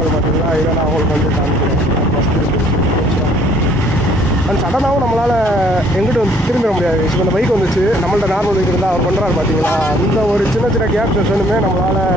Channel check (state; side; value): normal; both; correlation 0.60